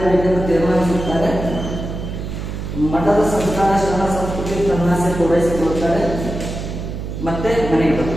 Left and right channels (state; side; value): noise; right; hum, 6 dB below the sound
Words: ತೀರ್ಮಾನಿಸುತ್ತಾರೆ. ಮಠದ ಸಂಸ್ಕಾರ ಶರಣ ಸಂಸ್ಕೃತಿ ತನ್ನಾಸೆ ಪೂರೈಸಿಕೊಳ್ಳುತ್ತಾರೆ. ಮತ್ತೆ ಮನೆಗೆ